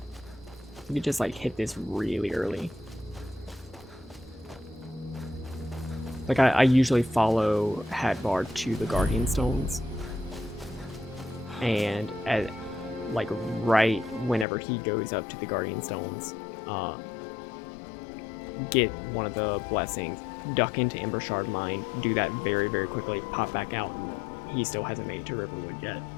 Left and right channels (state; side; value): drops out; right; at 14.5 s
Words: You could just like hit this really early. Like I usually follow Hadvar to the Guardian Stones. And at like right whenever he goes up to the Guardian Stones, get one of the blessings, duck into Ember Shard Mine, do that very, very quickly, pop back out, and he still hasn't made it to Riverwood yet.